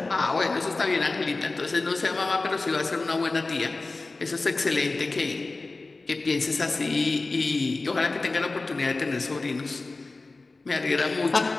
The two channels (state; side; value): quieter; right; 3.4 dB